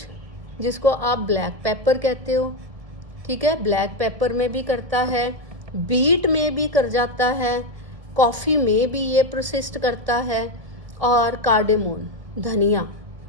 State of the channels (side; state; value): left; late; 1.5 ms